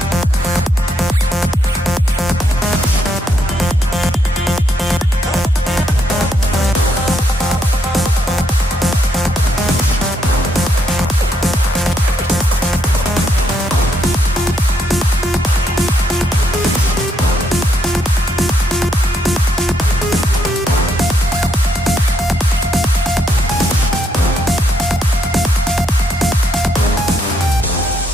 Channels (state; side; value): normal; both; correlation 0.75